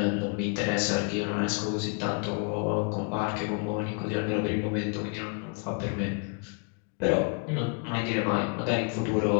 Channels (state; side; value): quieter; right; 37.8 dB